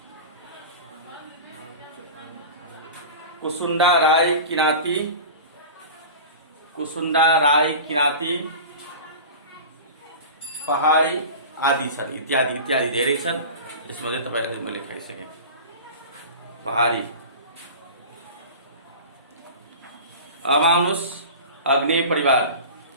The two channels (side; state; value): both; inverted; correlation -0.33